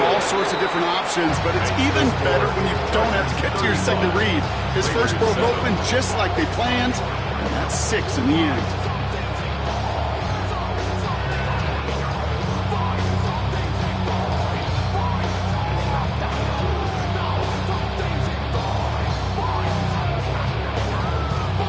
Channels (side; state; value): both; identical; correlation 1.00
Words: all sorts of different options, but it's even better when you don't have to get to your second read. His first broke open just like they planned, and that's 6 in the end.